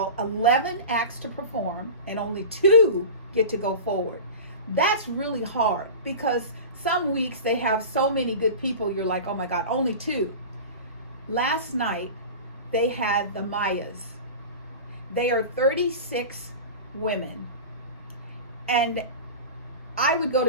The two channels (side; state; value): both; inverted; correlation -0.32